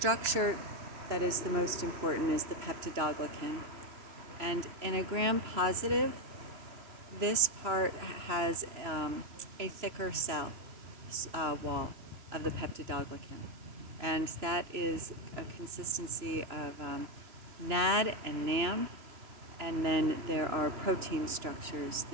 that is the most important is the peptidoglycan. And in a Gram positive, this part has a thicker cell wall of the peptidoglycan. And that is a consistency of NAD and NAM, and then there are protein structures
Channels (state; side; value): late; left; 2.9 ms